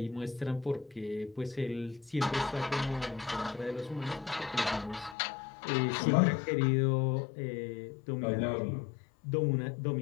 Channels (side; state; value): right; drops out; at 5.2 s